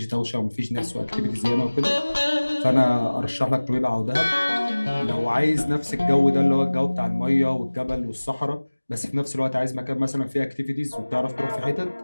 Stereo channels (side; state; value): both; inverted; correlation -1.00